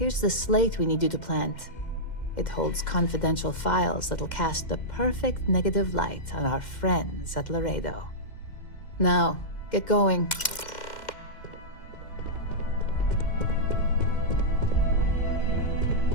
the slate we need you to plant. It holds confidential files that'll cast the perfect negative light on our friends at Laredo. Now, get going.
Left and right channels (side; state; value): right; late; 2.1 ms